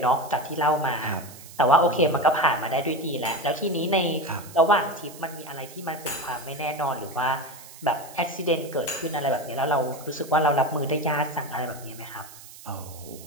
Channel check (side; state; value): right; noise; hiss, 18 dB below the sound